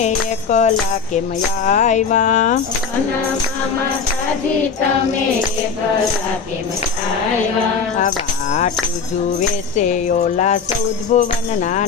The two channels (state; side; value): quieter; right; 5.7 dB